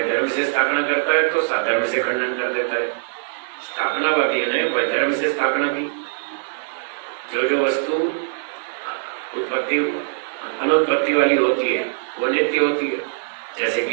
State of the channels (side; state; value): left; silent; digital silence